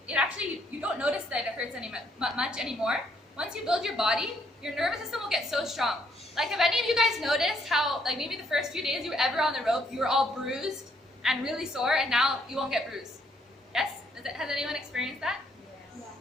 actually, you don't notice that it hurts much anymore. Once you build your body, your nervous system will get so strong. Like, have any of you guys noticed how, like, maybe the first few days you were ever on the rope, you were all bruised and really sore, and now you won't get bruised? Yes? Has anyone experienced that? Yeah.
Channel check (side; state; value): both; normal; correlation 0.69